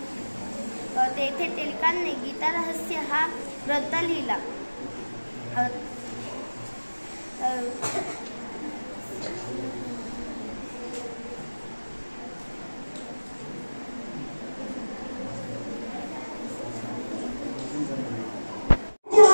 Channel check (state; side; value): inverted; both; correlation -1.00